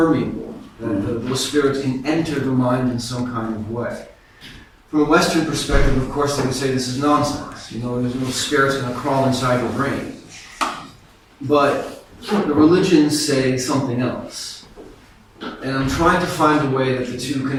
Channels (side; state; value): both; identical; correlation 1.00